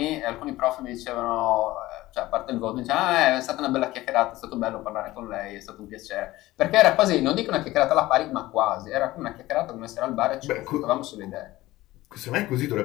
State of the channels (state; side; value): quieter; right; 17.5 dB